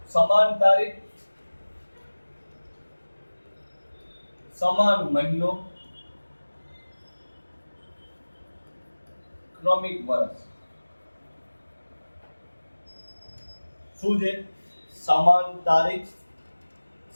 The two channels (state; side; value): inverted; both; correlation -1.00